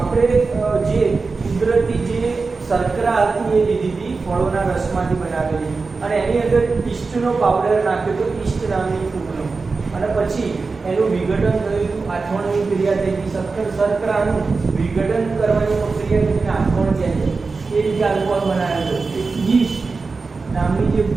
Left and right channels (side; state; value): left; quieter; 4.2 dB